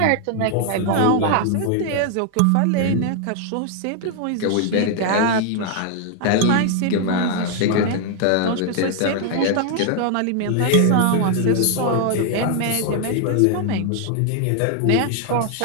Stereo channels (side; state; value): both; different; correlation 0.00